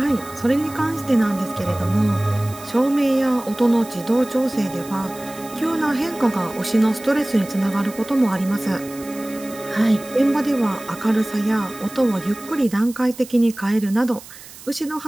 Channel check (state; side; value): noise; right; hiss, 17 dB below the sound